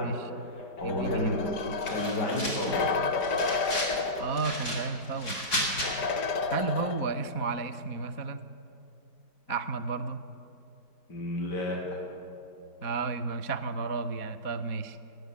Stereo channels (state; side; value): late; right; 4.8 ms